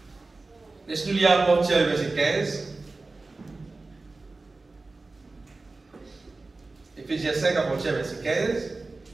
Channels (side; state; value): left; quieter; 3.5 dB